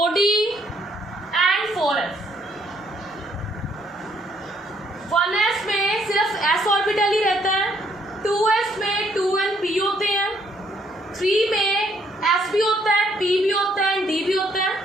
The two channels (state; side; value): normal; both; correlation 0.68